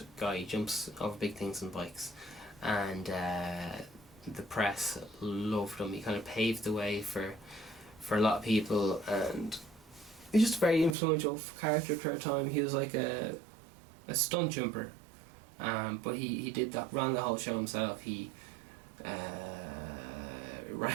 guy. He jumps over big things on bikes, and the press loved him. He kind of paved the way for a lot of people, and he's just a very influential character for a time. He was like a stunt jumper, but he did that, ran the whole show himself. He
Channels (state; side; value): drops out; left; at 11.0 s